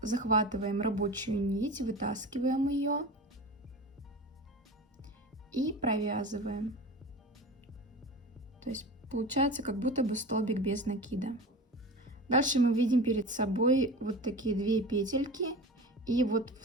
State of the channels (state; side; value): normal; both; correlation 0.32